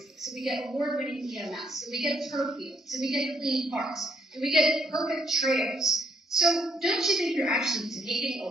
that we get award-winning EMS, that we get turf fields, that we get clean parks, that we get perfect trails. So don't you think you're actually taking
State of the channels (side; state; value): both; normal; correlation 0.70